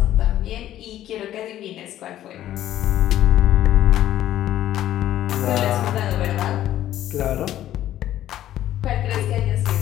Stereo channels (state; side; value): quieter; right; 12.7 dB